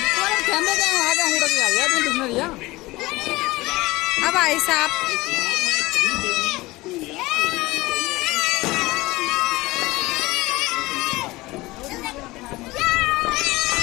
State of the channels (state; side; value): quieter; right; 20.5 dB